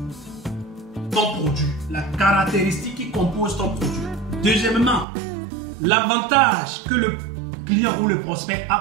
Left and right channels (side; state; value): left; drops out; at 5.1 s